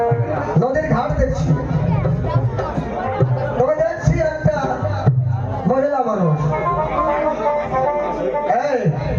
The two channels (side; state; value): both; identical; correlation 1.00